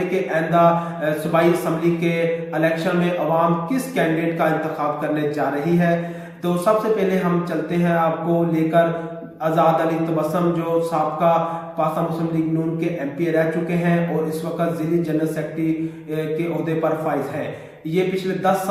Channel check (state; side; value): identical; both; correlation 1.00